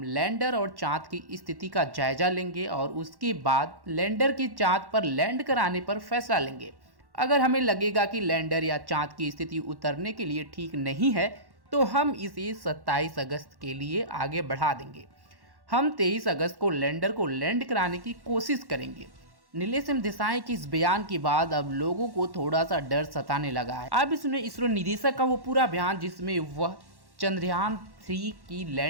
लैंडर और चांद की स्थिति का जायजा लेंगे और उसके बाद लैंडर के चांद पर लैंड कराने पर फैसला लेंगे। अगर हमें लगेगा कि लैंडर या चांद की स्थिति उतरने के लिए ठीक नहीं है तो हम इसे 27 अगस्त के लिए आगे बढ़ा देंगे। हम 23 अगस्त को लैंडर को लैंड कराने की कोशिश करेंगे। नीलेश एम देसाई के इस बयान के बाद अब लोगों को थोड़ा सा डर सताने लगा है। अब इसमें इसरो निदेशक का वो पूरा बयान जिसमें वह चंद्रयान 3 की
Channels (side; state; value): left; late; 1.1 ms